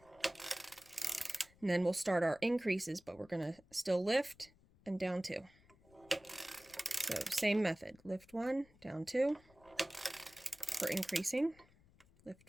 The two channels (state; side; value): noise; left; rumble, 28 dB below the sound